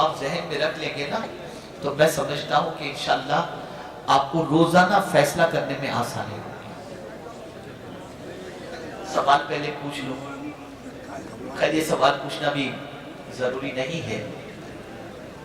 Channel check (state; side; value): identical; both; correlation 1.00